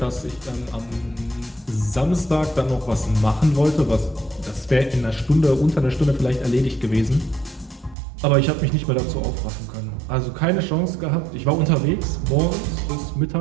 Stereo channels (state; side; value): drops out; left; at 8.0 s